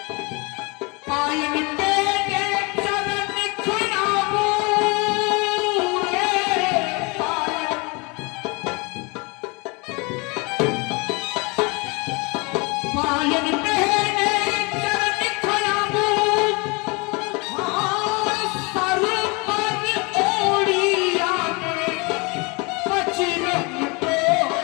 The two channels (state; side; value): quieter; right; 28.6 dB